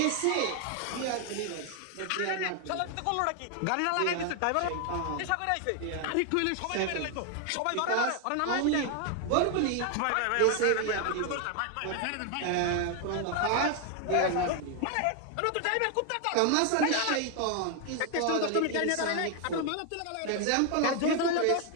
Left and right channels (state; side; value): different; both; correlation 0.01